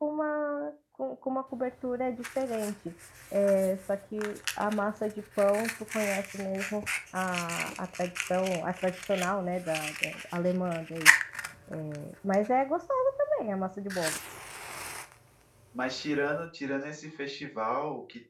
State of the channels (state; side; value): identical; both; correlation 1.00